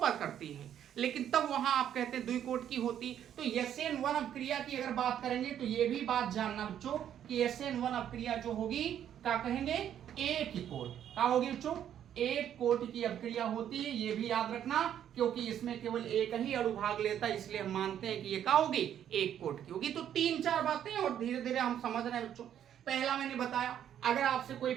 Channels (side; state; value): left; quieter; 10.0 dB